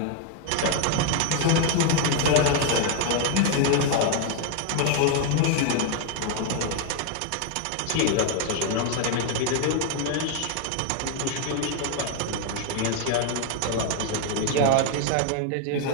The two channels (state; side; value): different; both; correlation 0.01